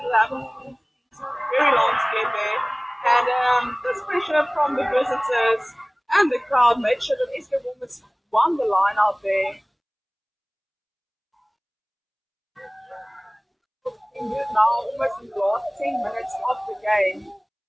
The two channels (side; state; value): both; identical; correlation 1.00